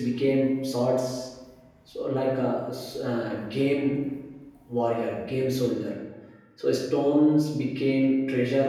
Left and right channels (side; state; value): both; identical; correlation 1.00